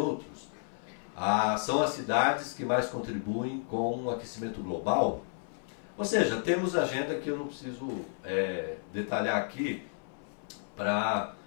São as cidades que mais contribuem com o aquecimento global. Ou seja, temos agenda que eu não preciso detalhar aqui para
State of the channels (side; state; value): right; silent; 56 dB below the other